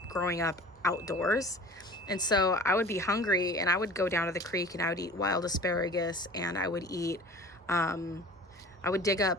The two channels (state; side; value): normal; both; correlation 0.42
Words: growing up outdoors. And so I would be hungry, and I would go down to the creek, and I would eat wild asparagus, and I would eat, I would dig